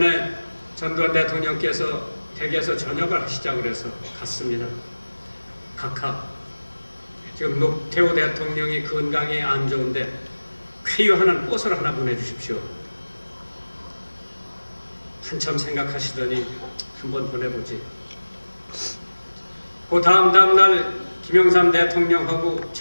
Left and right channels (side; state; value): both; inverted; correlation -1.00